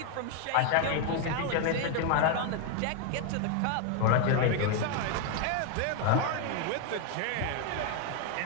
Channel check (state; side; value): different; both; correlation 0.01